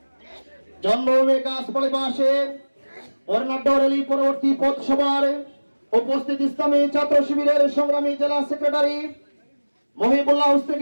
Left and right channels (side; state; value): both; inverted; correlation -1.00